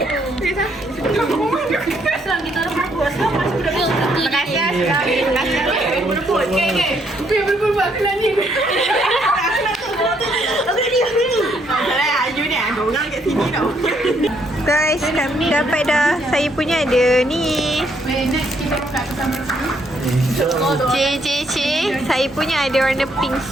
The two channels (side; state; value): both; normal; correlation 0.71